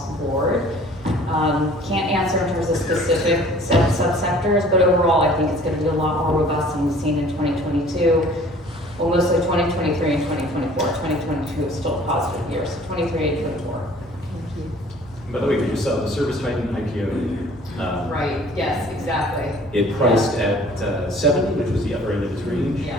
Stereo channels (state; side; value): normal; both; correlation 0.52